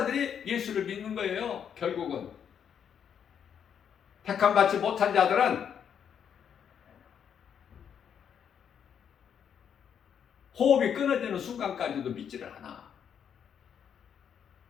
예수를 믿는 거예요. 결국은 택함 받지 못한 자들은 호흡이 끊어지는 순간까지도 믿지를 않아.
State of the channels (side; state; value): right; quieter; 8.1 dB